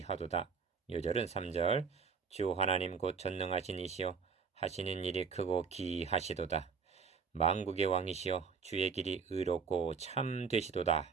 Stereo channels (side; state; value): left; quieter; 5.7 dB